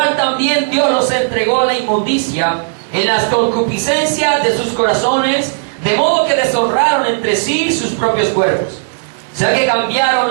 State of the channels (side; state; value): left; silent; digital silence